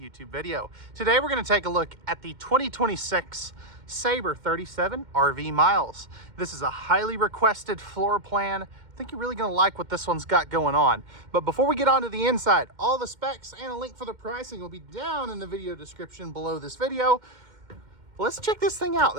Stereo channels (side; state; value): left; late; 2.1 ms